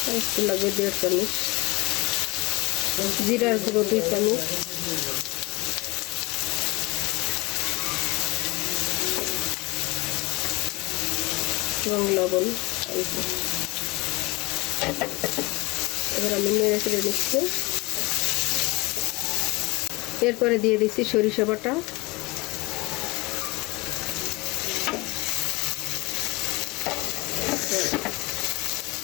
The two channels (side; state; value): right; quieter; 24.2 dB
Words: একটু লাগবে 1.5 চামচ, জিরার গুঁড়ো 2 চামচ, এবং লবণ। এবার আমি নেড়ে চেড়ে নিচ্ছি। এরপরে দিয়ে দিচ্ছি সরিষা বাটা,